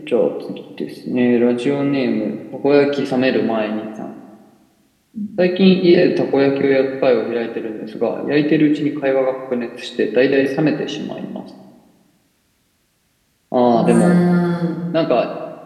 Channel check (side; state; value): both; identical; correlation 1.00